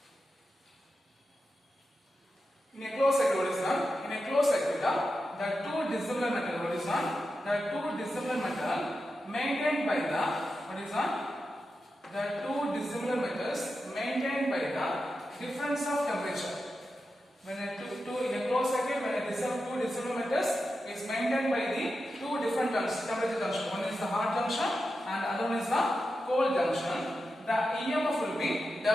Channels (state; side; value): normal; both; correlation 0.90